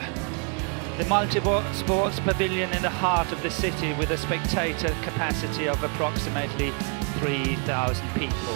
The multi-sports pavilion in the heart of the city with a spectator capacity of approximately 3,000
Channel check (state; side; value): quieter; left; 37.5 dB